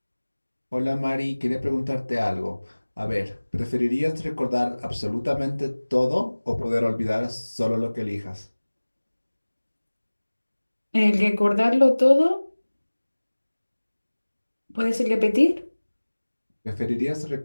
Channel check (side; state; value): both; inverted; correlation -1.00